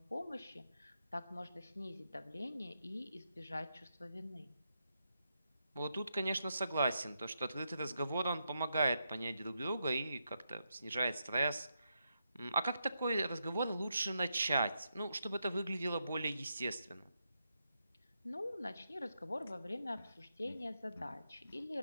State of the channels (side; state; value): both; inverted; correlation -0.84